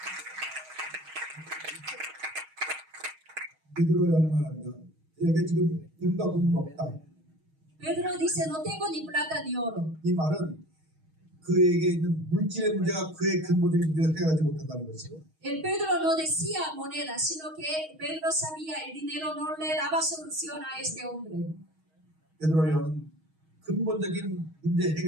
베드로야 말합니다. 내게 지금 금과 금은 없다. Pedro dice, no tengo ni plata ni oro. 이 말은 그에게 있는 물질의 문제가 그의 근본적인 문제를 해결하지 못한다는 것이고 El Pedro no decía moneda, sino que Pedro sabía el dinero no le daba solución a este hombre. 베드로 요한은 근본적인 문제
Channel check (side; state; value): left; late; 6.3 ms